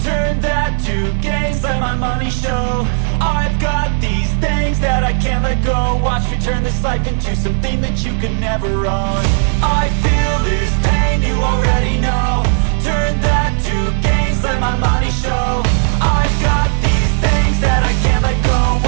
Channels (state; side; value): silent; left; 64 dB below the other